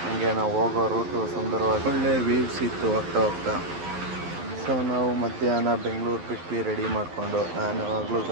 ಹಂಗೆ ನಾವು ಹೋಗೋ ರೂಟು ಸುಂದರವಾಗಿ ಒಳ್ಳೆ ವ್ಯೂಸ್ ಇತ್ತು ಹೋಗ್ತಾ. ಸೊ ನಾವು ಮಧ್ಯಾಹ್ನ ಬೆಂಗಳೂರು ಬಿಟ್ವಿ ರೆಡಿ ಮಾಡಿಕೊಂಡು. ನಾನು ಯಾವಾಗಲೂ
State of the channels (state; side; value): late; left; 12 ms